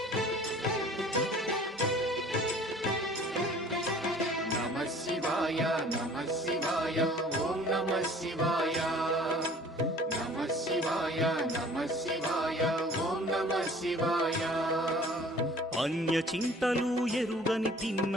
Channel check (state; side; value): normal; both; correlation 0.50